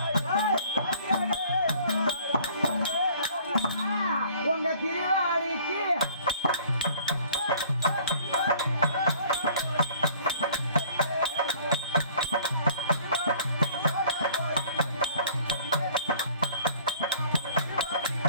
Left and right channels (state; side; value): inverted; both; correlation -0.53